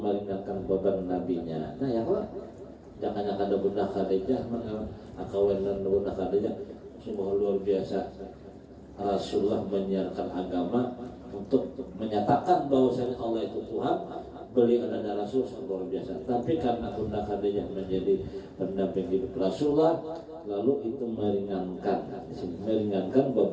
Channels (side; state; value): both; identical; correlation 1.00